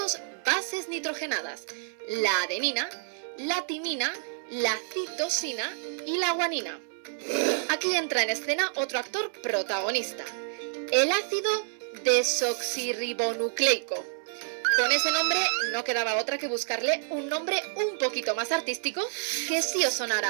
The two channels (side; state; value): left; silent; digital silence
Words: bases nitrogenadas: la adenina, la timina, la citosina y la guanina. Aquí entra en escena otro actor protagonista, el ácido desoxirribonucleico. Con ese nombre no quedaba otra que buscarle un nombre un poquito más artístico que sí os